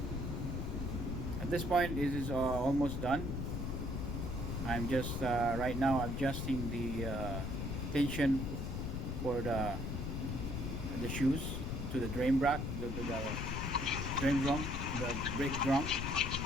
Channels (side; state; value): left; noise; rumble, 2 dB below the sound